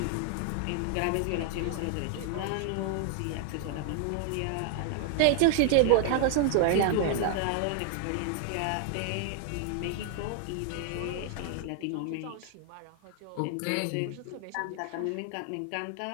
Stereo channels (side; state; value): both; different; correlation 0.00